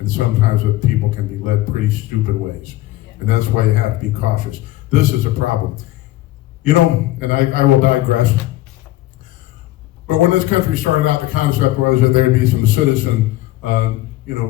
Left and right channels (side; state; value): right; quieter; 16.7 dB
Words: sometimes the people can be led pretty stupid ways. And that's why you have to be cautious. This is a problem. You know, and I will digress, but when this country started out, the concept was that there'd be some citizen,